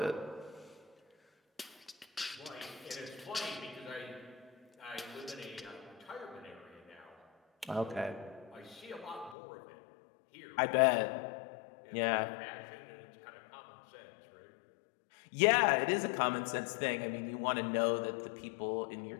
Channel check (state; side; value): drops out; right; at 9.3 s